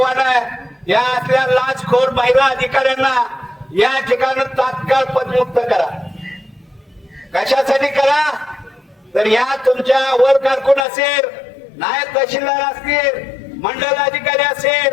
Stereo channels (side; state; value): right; drops out; at 10.9 s